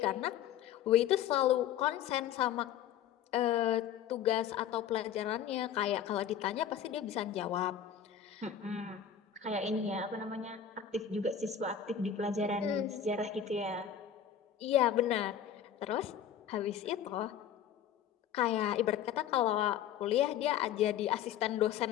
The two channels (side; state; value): right; quieter; 9.1 dB